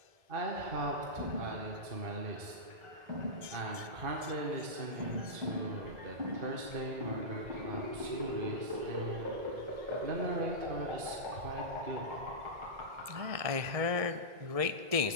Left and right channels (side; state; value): left; late; 1.7 ms